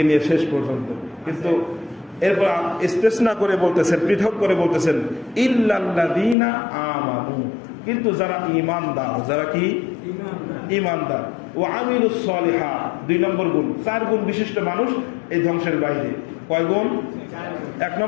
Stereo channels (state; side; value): drops out; right; at 6.4 s